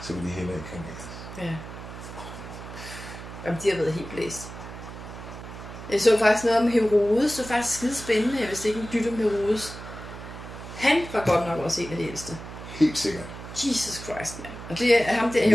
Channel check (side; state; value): right; noise; hum, 12 dB below the sound